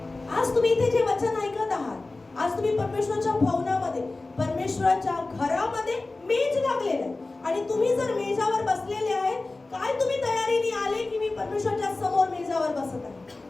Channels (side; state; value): right; quieter; 3.3 dB